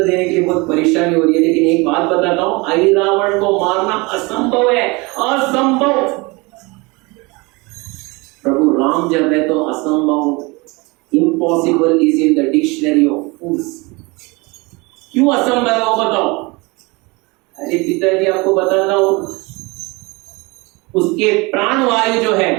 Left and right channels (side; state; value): left; quieter; 26.0 dB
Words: देने के लिए बहुत परेशानी हो रही है, लेकिन एक बात बताता हूं, अहिरावण को मारना असंभव है, असंभव। प्रभु राम जब है तो असंभव, impossible is in the dictionary of fools. क्यों असंभव है वो बताओ? अरे पिताजी आपको बताता हूं, उसके प्राण वायु जो